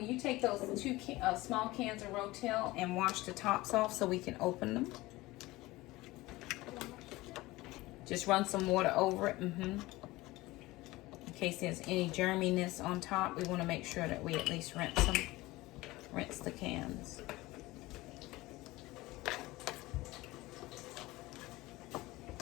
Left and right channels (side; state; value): right; quieter; 19.7 dB